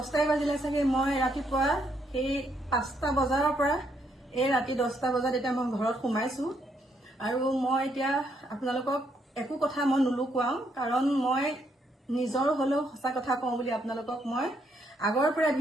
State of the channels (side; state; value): both; normal; correlation 0.74